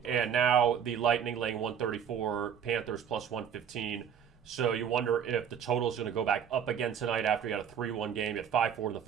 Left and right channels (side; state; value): left; quieter; 8.2 dB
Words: And now the Lightning laying 134, Panthers plus 115. So you wonder if the total is going to go back up again tonight after you had a 3-1 game. You had 5-4 in the